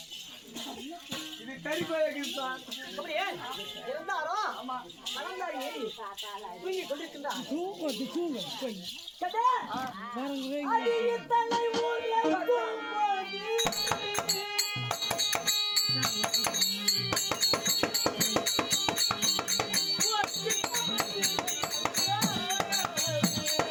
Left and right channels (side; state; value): both; identical; correlation 1.00